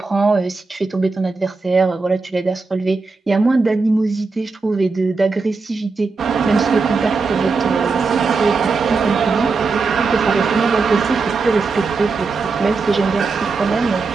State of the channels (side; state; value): left; quieter; 4.2 dB